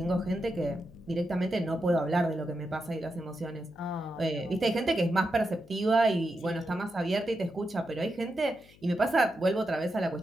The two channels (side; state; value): left; noise; hum, 25 dB below the sound